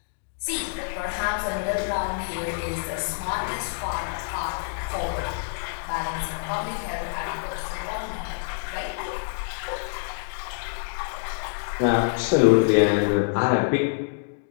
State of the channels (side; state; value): right; silent; digital silence